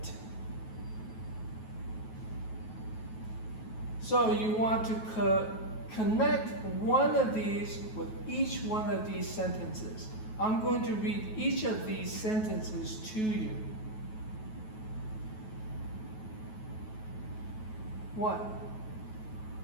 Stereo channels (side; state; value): right; late; 9.3 ms